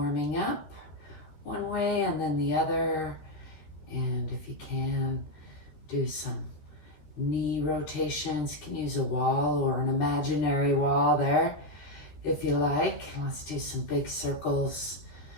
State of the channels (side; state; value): right; late; 13 ms